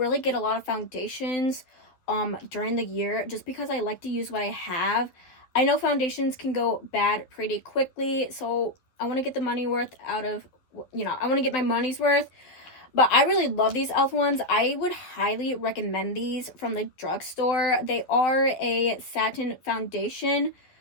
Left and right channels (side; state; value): right; late; 11 ms